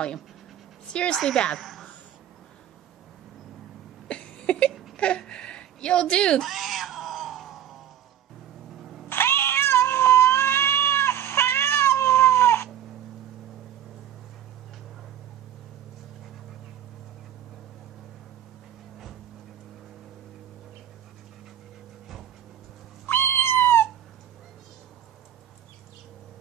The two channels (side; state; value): left; quieter; 10.7 dB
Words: Seriously bad. Yo, dude.